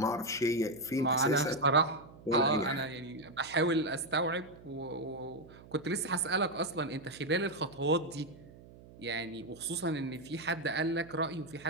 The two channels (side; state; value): right; noise; hum, 20 dB below the sound